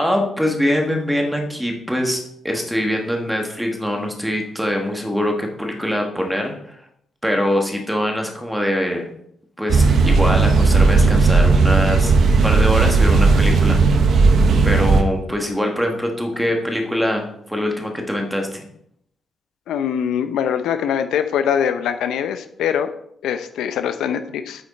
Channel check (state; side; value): normal; both; correlation 0.79